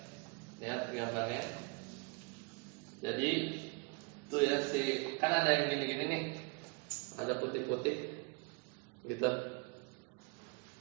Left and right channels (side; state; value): left; quieter; 29.0 dB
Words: Lihat gambarnya. Jadi tuh ya kan ada yang gini-gini nih. Ada putih-putih gitu.